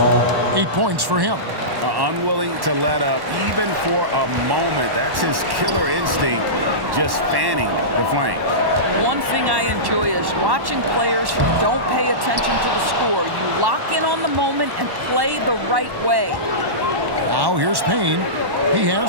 8 points for him. Unwilling to let up, even for a moment. That's his killer instinct, just fanning the flame. One thing I enjoy is watching players who don't pay attention to the score. You lock in on the moment and play the right way. Now here's Payne. He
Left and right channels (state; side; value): late; left; 1.1 ms